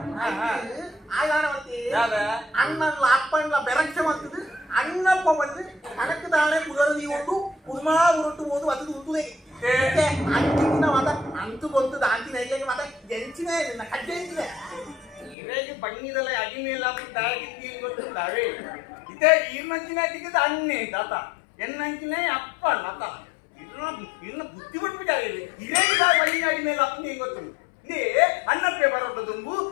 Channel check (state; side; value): drops out; right; at 15.4 s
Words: ಅಣ್ಣಲ್ಲ ಅಪ್ಪಣ್ಣ ಬೆರಕ್ಷೆ ಮಾಡ್ತದೆ ಅಣ್ಣಪ್ಪ ಬಂದು ಕಣಕ್ಕೆ ತಾಳೆ ಪುರದಿ ಉಂಟು ಕುದುಮಾ ಉರುಟ್ಟು ಹೋದು ಅದು ಉಂಟುದೇ ಅಂತಿನ ಮತ ಅಂತು ಬಂತು ಅಂತಿನ ಹೇಗೆ ಮತ ಜಂಚಿನ ಕಡ್ಡೆ ಎಂಚಿನ ಇರೇಗೆ ಬಣ್ಣಿದಲ್ಲ ಅಡಿಮೇಲ ತಾಗಿದ್ದಿ ಗೊತ್ತುಂಟಾವೆ ಇದೇ ಈರ್ನಂಚಿನ ತಿಕ್ಕದ ಅಣ್ಣೆ ತಾತ ಎನ್ನಂಚಿನ ಅಪ್ಪ ನತ ಇನ್ನ ಬುದ್ಧಿ ಬಿಟ್ಬಿಟ್ಟಾರೆ ಇರೇಗ ಬಣ್ಣಿನ ಅಡಿಮೇಲೆ ಅಪ್ಪನೇ ಗೊತ್ತುಂಟು ಇದೇ ಅನ್ನಪ್ಪೆ ಬರೋದು ತುಂಬು